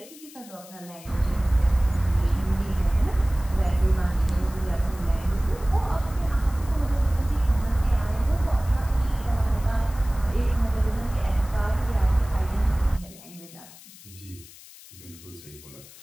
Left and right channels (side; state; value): left; noise; hiss, 20 dB below the sound